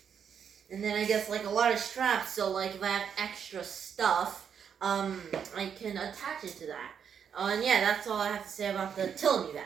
and then I guess like a lot of straps. So like if I have extra stuff, I can attach it to that. And yeah, that's all I have to say about the Tilami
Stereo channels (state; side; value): quieter; left; 7.6 dB